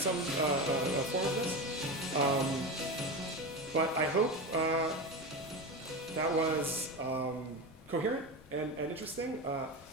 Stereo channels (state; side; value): noise; left; rumble, 24 dB below the sound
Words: form of this. But I hope that was coherent and interesting.